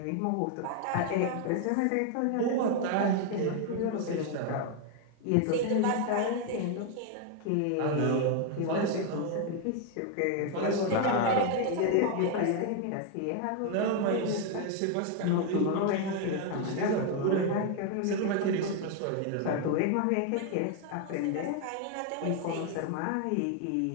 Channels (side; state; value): both; different; correlation 0.00